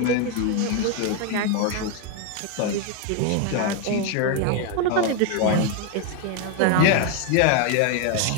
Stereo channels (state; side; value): different; both; correlation 0.01